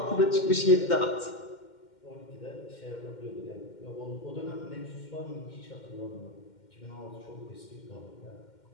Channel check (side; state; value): right; late; 2.1 ms